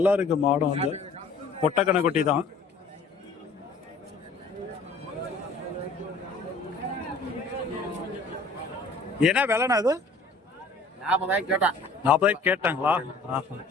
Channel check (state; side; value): quieter; right; 3.7 dB